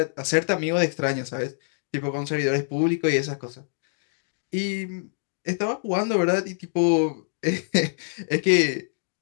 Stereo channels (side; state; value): right; silent; digital silence